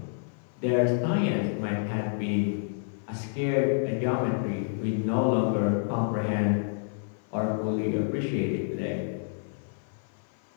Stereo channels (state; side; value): silent; right; 59 dB below the other